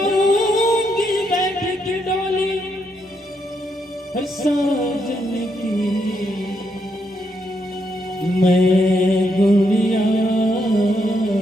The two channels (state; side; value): normal; both; correlation 0.78